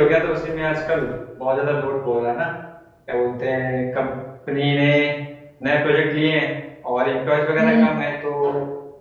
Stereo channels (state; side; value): identical; both; correlation 1.00